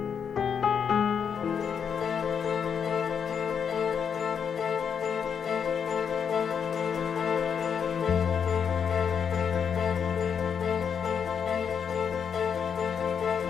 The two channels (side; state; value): right; quieter; 7.2 dB